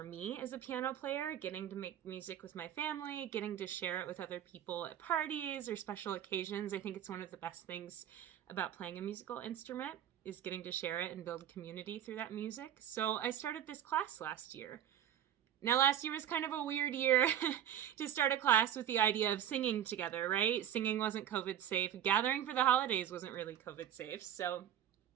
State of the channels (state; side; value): quieter; left; 10.4 dB